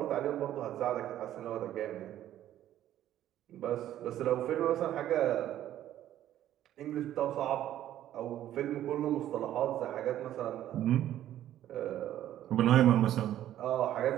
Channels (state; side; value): quieter; left; 12.3 dB